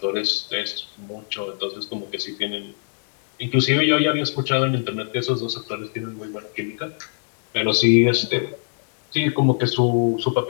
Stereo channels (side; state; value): right; silent; 63 dB below the other